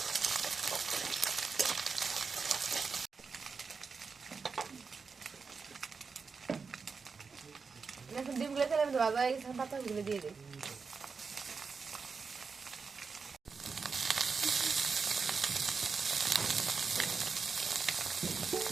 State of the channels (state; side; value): quieter; left; 5.1 dB